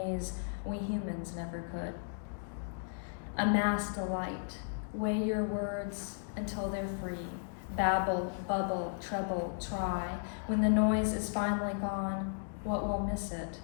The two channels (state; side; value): silent; right; digital silence